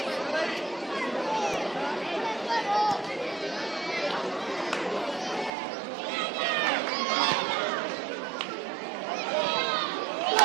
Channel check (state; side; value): drops out; left; at 5.5 s